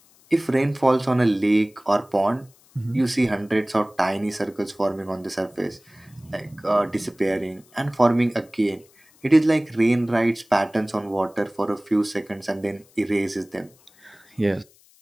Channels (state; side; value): noise; left; hiss, 30 dB below the sound